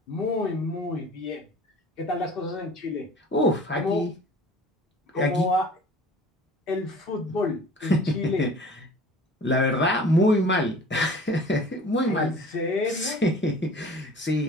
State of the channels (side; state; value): both; normal; correlation 0.46